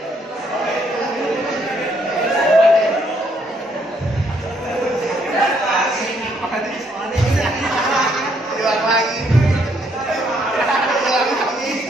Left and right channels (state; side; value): normal; both; correlation 0.70